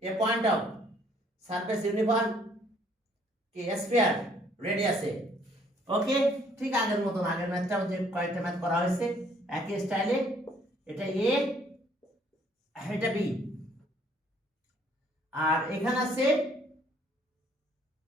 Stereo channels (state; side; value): normal; both; correlation 0.63